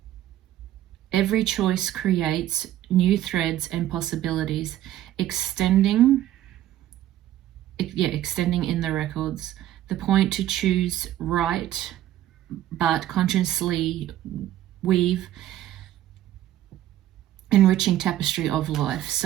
Every choice creates new threads and possibilities, extending in the records. The point to choose right, but consciously weave enriching tapestry of life.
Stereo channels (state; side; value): quieter; left; 13.0 dB